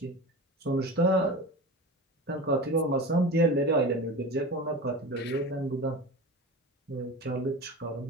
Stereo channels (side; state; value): both; normal; correlation 0.31